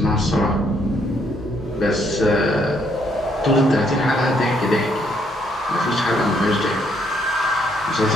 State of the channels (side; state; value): both; normal; correlation 0.70